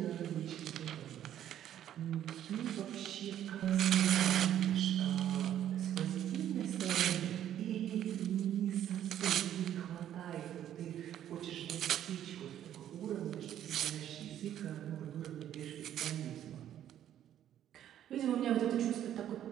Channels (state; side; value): quieter; left; 11.0 dB